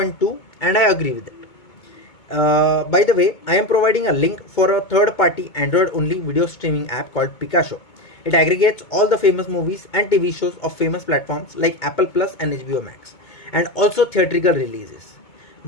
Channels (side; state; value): right; late; 2.2 ms